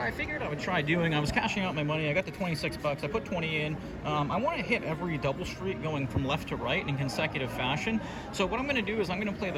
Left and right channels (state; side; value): identical; both; correlation 1.00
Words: I figured I would try doing, I was cashing out my money, I got the 26 bucks, I put 20 in. I wanna hit every double street going from left to right in consecutive fashion. So what I'm gonna do is I'm gonna play